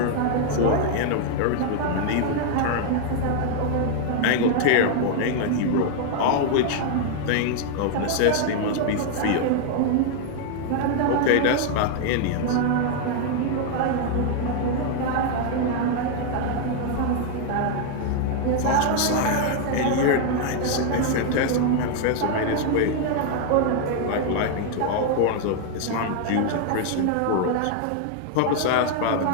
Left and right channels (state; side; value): different; both; correlation 0.00